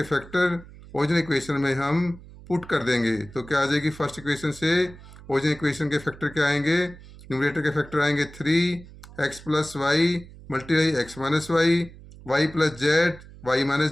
फैक्टर ओरिजिनल इक्वेशन में हम पुट कर देंगे। तो क्या आ जाएगी, फर्स्ट इक्वेशन से ओरिजिनल इक्वेशन के फैक्टर क्या आएंगे, न्यूमरेटर के फैक्टर आएंगे 3 x plus Y multiply x minus y plus Z Y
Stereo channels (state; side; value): noise; right; hum, 19 dB below the sound